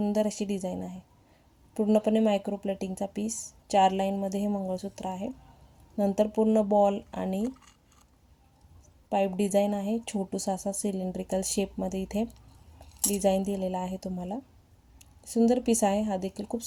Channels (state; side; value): identical; both; correlation 1.00